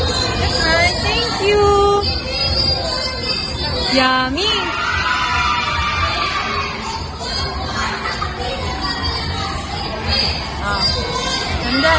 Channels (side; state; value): both; identical; correlation 1.00